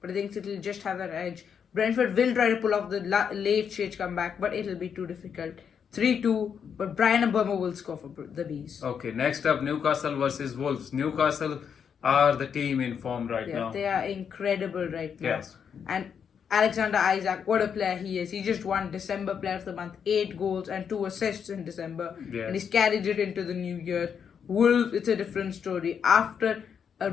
but I think City will just have that edge. Brentford will try to pull off the late stage comeback, but it'll be too difficult. 3-2, but Brian Mbeumo will score for the Bees. Okay, next up, Newcastle versus Wolves. Newcastle are the team in form right now. They are incredible right now. Yes. And Alexander Isak, what a player he is. He just won December Player of the Month, 8 goals and 2 assists in December. Yes. And he's carried it into the new year. Wolves, it's a different story. After a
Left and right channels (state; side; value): quieter; right; 7.3 dB